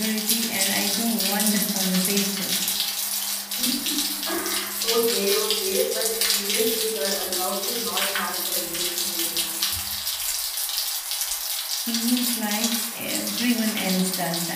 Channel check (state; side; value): identical; both; correlation 1.00